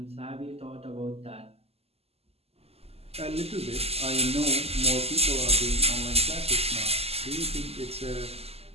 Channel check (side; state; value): left; late; 0.29 ms